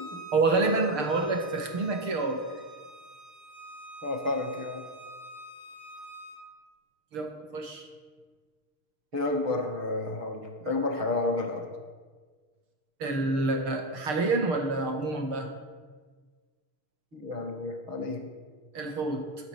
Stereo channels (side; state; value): left; late; 6.7 ms